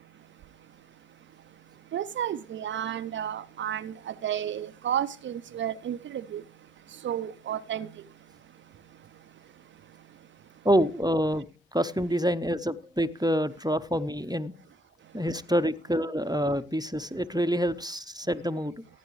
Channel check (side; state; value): both; normal; correlation 0.61